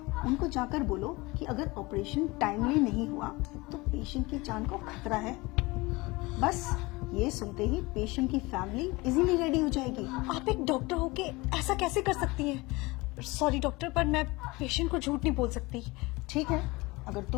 उनको जाकर बोलो कि अगर ऑपरेशन टाइमली नहीं हुआ तो पेशेंट की जान को खतरा है। बस ये सुनते ही पेशेंट की फैमिली इजीली रेडी हो जाएगी। आप एक डॉक्टर होके ऐसा कैसे कर सकती हैं? सॉरी डॉक्टर, पर मैं पेशेंट को झूठ नहीं बोल सकती। ठीक है, अगर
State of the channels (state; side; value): quieter; right; 23.1 dB